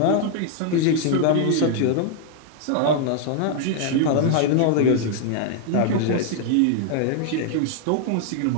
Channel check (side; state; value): both; different; correlation 0.00